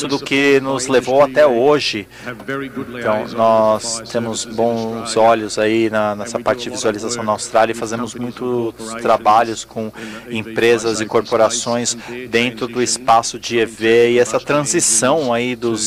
do que nos levou até hoje. Então, nós temos bons olhos aí nessa parte de visualização na Austrália e fazemos muitos trabalhos com empresas e corporações dentro do espaço de EV e essa transição aí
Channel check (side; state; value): both; identical; correlation 1.00